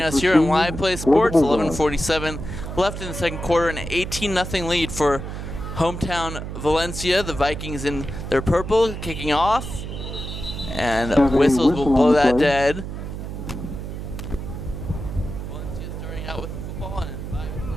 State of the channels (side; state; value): right; noise; hum, 7 dB below the sound